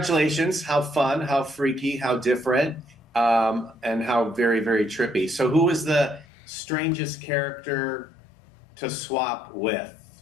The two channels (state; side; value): drops out; right; at 6.2 s